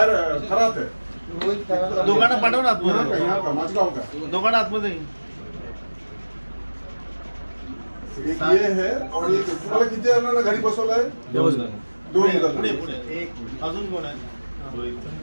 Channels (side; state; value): both; inverted; correlation -1.00